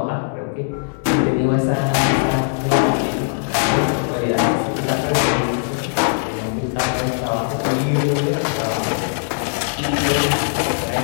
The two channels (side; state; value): right; silent; digital silence